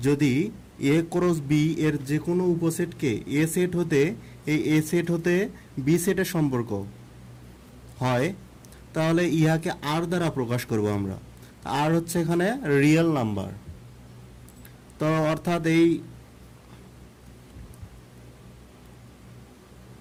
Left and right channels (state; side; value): identical; both; correlation 1.00